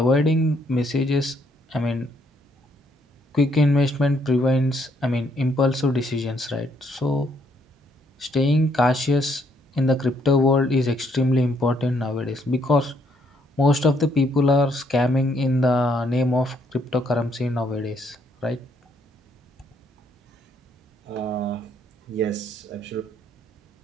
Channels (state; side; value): normal; both; correlation 0.70